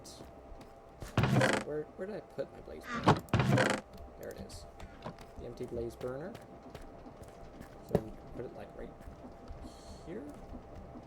Where did I put my blaze burner? There it is. The empty blaze burner. So we put it like right here?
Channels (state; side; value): identical; both; correlation 1.00